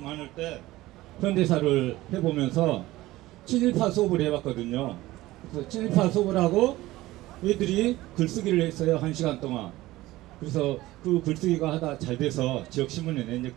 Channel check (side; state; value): left; quieter; 17.5 dB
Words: 때 현대사를 해보면서 친일파 수업을 해봤거든요. 그래서 친일파 수업을 하고 얘들이 글쓰기를 했어요. 1시간 동안. 그래서 그 글쓰기가 하다 잘 돼서 지역신문에 낸